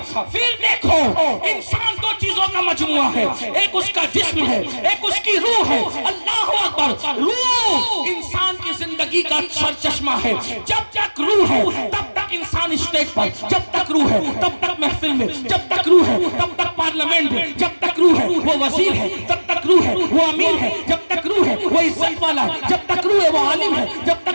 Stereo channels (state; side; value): inverted; both; correlation -1.00